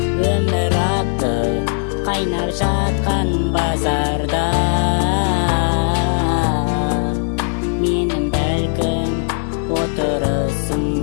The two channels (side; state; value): right; silent; 67 dB below the other